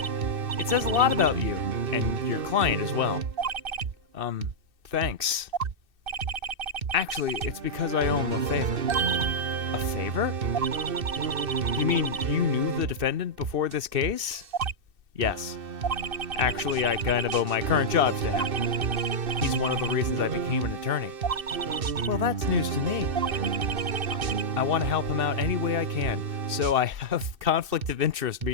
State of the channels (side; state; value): left; late; 2.6 ms